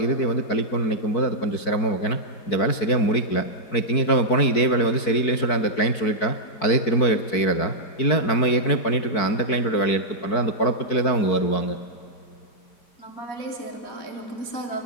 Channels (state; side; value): late; right; 4.6 ms